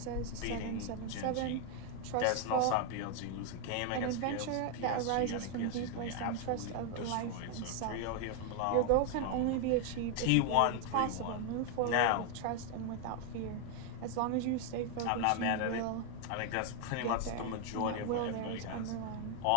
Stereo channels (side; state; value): both; different; correlation 0.01